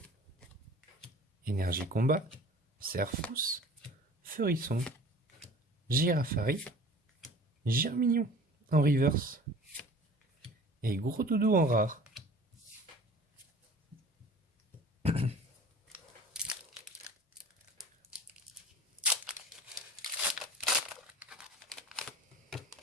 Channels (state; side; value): normal; both; correlation 0.44